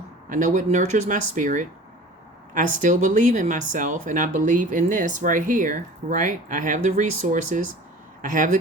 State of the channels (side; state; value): both; normal; correlation 0.42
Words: I know what nurtures my spirit. I still believe in myself, and I believe in this right here, right? I have the resources. I have the